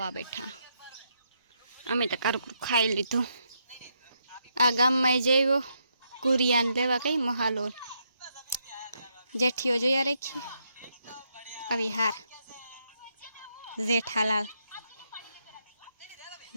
બેઠા અમે તો કારકું ખાઈ લીધું આ ગામમાં જઈવો કુરિયાન લેવા કઈ મહાલો જેઠીઓ જોયા રાખીએ આવી હાર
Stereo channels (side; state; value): both; inverted; correlation -0.79